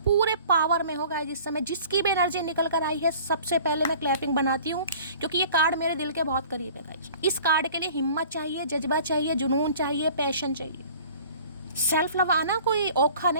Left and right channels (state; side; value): inverted; both; correlation -0.48